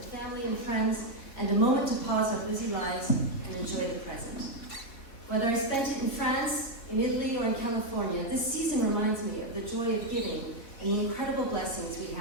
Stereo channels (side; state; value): right; late; 4.3 ms